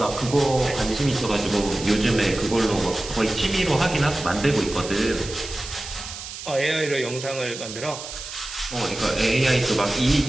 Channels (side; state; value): right; noise; hiss, 10 dB below the sound